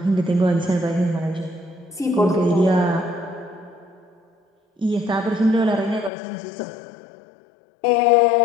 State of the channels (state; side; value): drops out; right; at 6.1 s